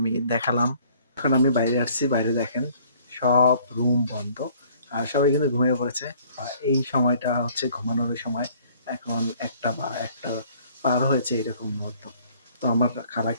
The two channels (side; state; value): both; inverted; correlation -0.57